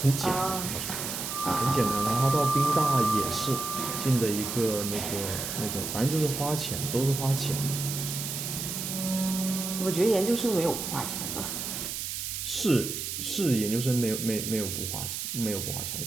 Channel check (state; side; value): noise; right; hiss, 4 dB below the sound